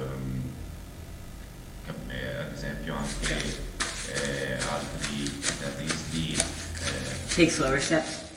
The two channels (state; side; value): identical; both; correlation 1.00